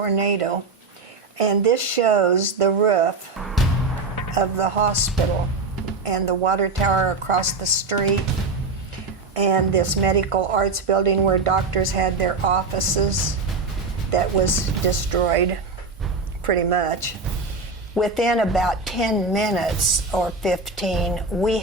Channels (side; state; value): left; quieter; 4.0 dB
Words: and this shows the roof of the hospital and the water tower across the street and this medical arts building where doctors had their offices that was destroyed pretty much. Within about 10 minutes or 15, we